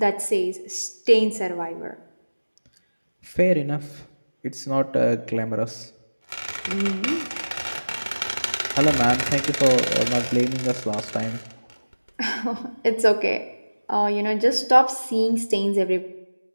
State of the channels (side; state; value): both; inverted; correlation -1.00